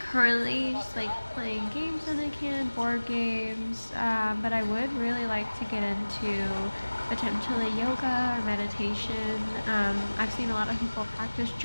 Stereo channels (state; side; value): inverted; both; correlation -1.00